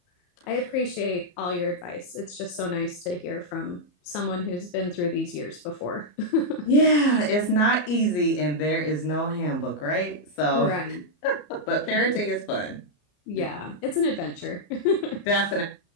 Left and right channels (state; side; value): late; right; 34 ms